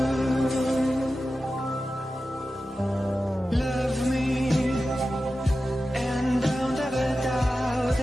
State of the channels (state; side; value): normal; both; correlation 0.93